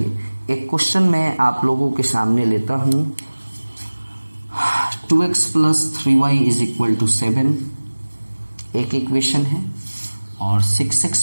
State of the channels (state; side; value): inverted; both; correlation -1.00